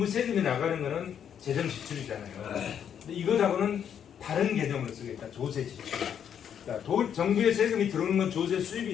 세금이 나가는 거는 재정 지출이잖아요. 근데 이것하고는 다른 개념으로 쓰겠다. 조세 지출. 그러니까 정부의 세금이 들어오는 건 조세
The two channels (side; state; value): right; quieter; 8.6 dB